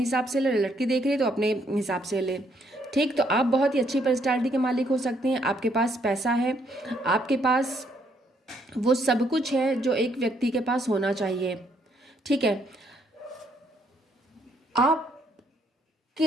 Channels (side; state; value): both; normal; correlation 0.71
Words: से ले, लड़की देख रही है तो अपने हिसाब से ले, ठीक। तो आप बहुत ही अच्छी पर्सनालिटी के मालिक हो सकते हैं, आपके पास पैसा है, आपके पास वो सब कुछ है जो एक व्यक्ति के पास होना चाहिए, ठीक है।